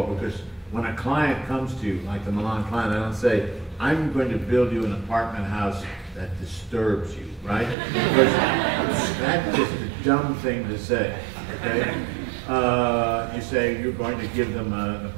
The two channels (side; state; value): left; drops out; at 7.8 s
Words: because when a client comes to you, like the Milan client, I don't say, I'm going to build you an apartment house that disturbs you, right? Because that's just a dumb thing to say, okay? You say you're going to give them an